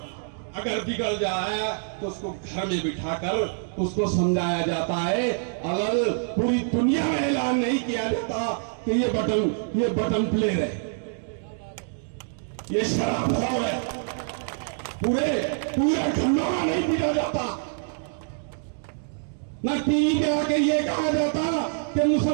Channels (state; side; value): silent; left; digital silence